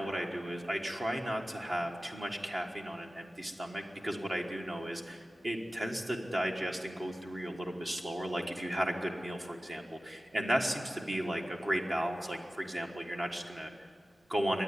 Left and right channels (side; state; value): both; normal; correlation 0.95